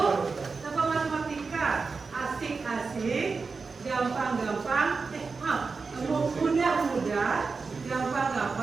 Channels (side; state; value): left; quieter; 4.6 dB